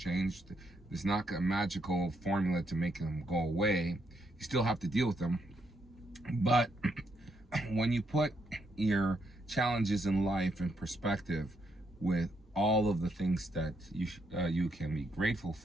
There's not a magical formula to make them go away. You still have to deal with them. But when you put your challenges in life in perspective with all of the things that you can be grateful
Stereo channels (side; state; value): both; normal; correlation 0.77